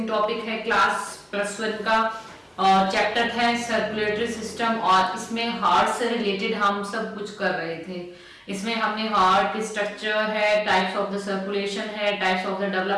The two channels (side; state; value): both; identical; correlation 1.00